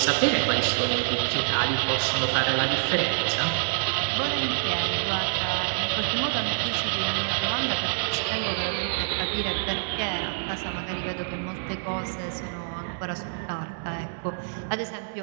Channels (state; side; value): silent; left; digital silence